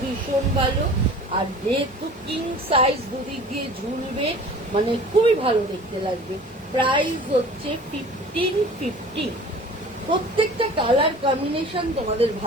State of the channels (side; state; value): both; normal; correlation 0.44